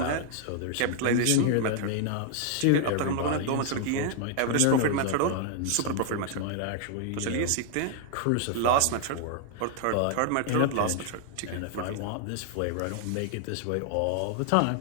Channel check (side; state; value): both; different; correlation 0.00